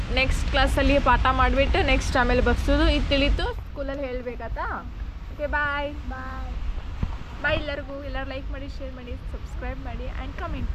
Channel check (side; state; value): both; identical; correlation 1.00